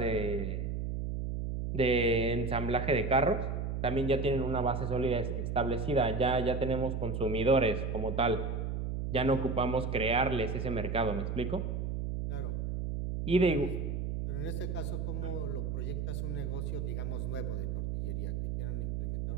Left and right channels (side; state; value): right; noise; hum, 2 dB below the sound